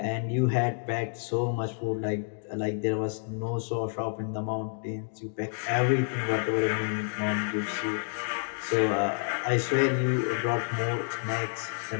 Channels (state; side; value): silent; right; digital silence